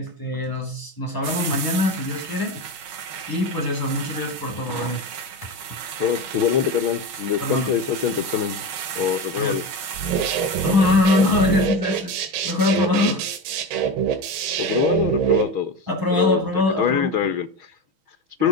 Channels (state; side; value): late; left; 6.3 ms